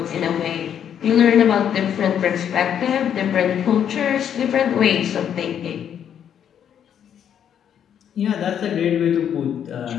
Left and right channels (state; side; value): quieter; right; 9.0 dB